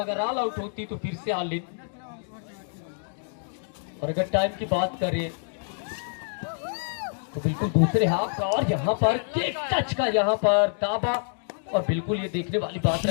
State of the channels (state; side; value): silent; right; digital silence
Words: अगर ऑल आउट होती तो फिर से ऑल इन। और अगर टाइम की बात करें तो बिल्कुल दूसरे हाफ का, और यहाँ पर किक टच का यहाँ पर ताबा, और बिल्कुल ये देखने वाली बात